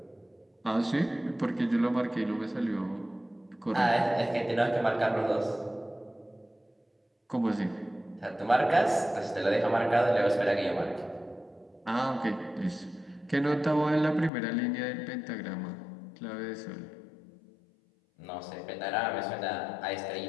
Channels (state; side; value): drops out; right; at 14.3 s